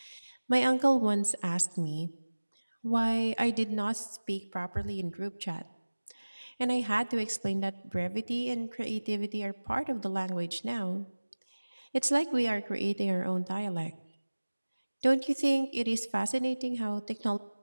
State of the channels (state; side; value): inverted; both; correlation -1.00